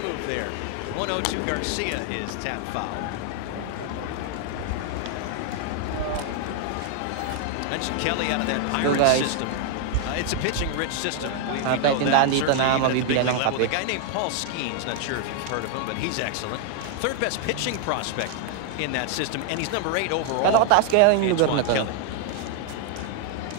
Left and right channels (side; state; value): both; different; correlation 0.00